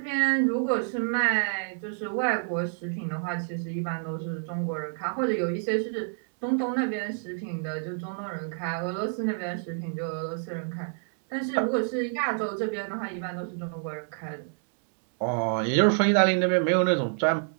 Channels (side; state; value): left; silent; digital silence